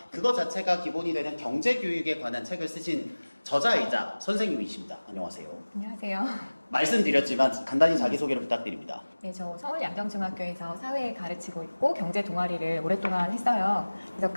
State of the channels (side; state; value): both; inverted; correlation -1.00